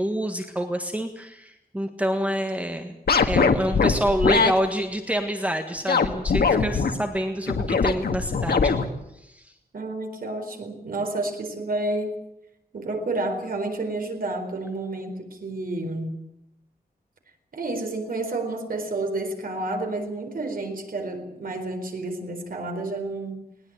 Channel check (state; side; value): normal; both; correlation 0.49